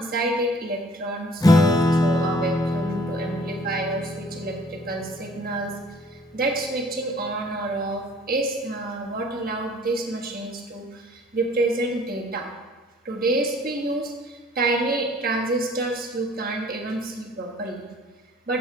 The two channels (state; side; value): normal; both; correlation 0.54